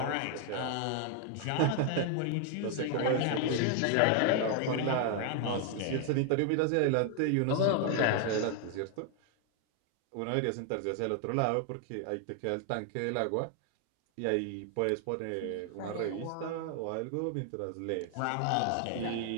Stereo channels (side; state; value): both; different; correlation 0.00